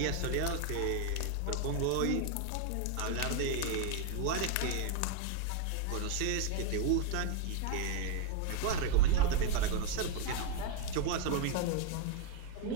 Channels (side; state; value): both; different; correlation 0.00